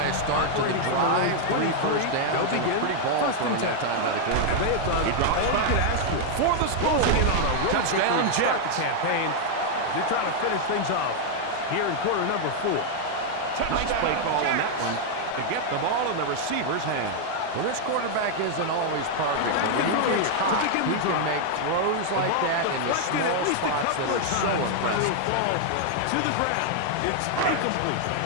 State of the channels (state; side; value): different; both; correlation 0.00